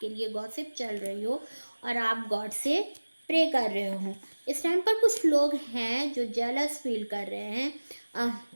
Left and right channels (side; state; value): both; inverted; correlation -1.00